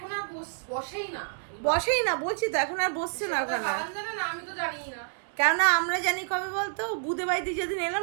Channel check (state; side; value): silent; left; digital silence